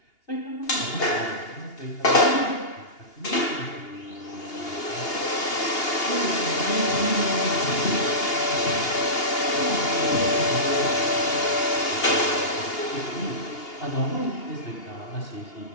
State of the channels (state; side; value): late; right; 2.8 ms